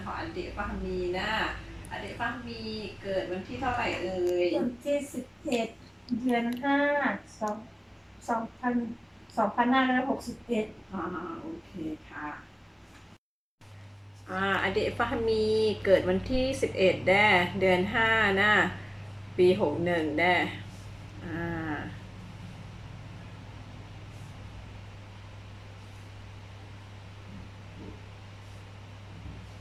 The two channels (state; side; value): identical; both; correlation 1.00